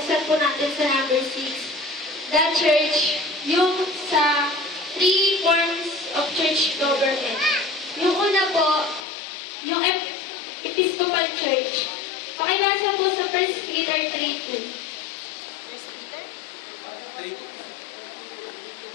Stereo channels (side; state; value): right; drops out; at 9.1 s